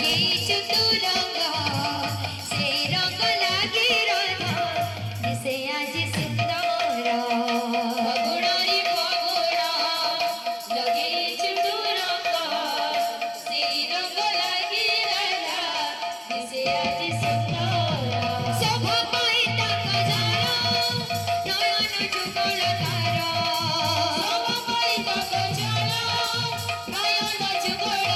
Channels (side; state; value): both; identical; correlation 1.00